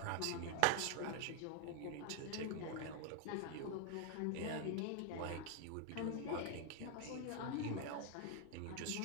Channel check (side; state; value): both; different; correlation 0.00